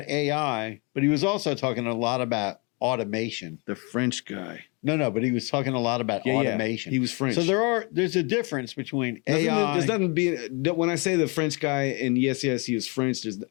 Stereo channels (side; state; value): right; quieter; 31.5 dB